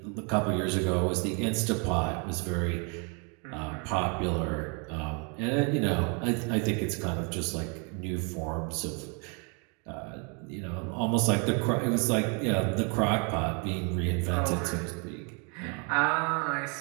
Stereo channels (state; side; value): quieter; left; 35.5 dB